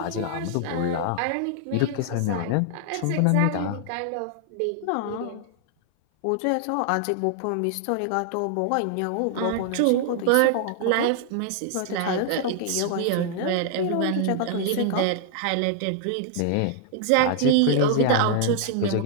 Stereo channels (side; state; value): both; different; correlation 0.00